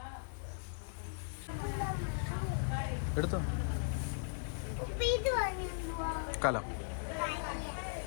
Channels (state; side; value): silent; right; digital silence